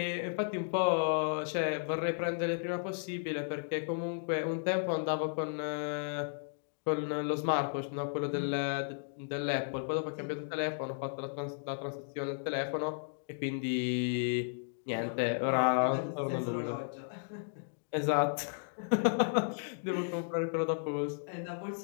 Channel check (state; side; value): silent; right; digital silence